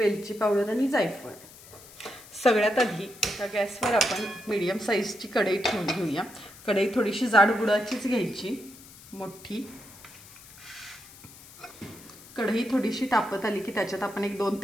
पावडर आणि जायफळ। सगळ्यात आधी एका गॅसवर आपण मीडियम साईजची कढई ठेवून घेऊया। कढई थोडीशी जाड बुडाचीच घ्यायची, मोठी। कढई थोडीशी तापत आली की त्याच्यात आपण एक 2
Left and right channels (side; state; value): left; noise; hiss, 20 dB below the sound